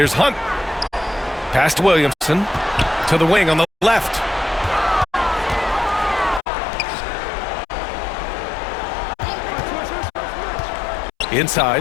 Hunt. Pass to Williamson. To the wing on the left.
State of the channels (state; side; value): drops out; right; at 6.4 s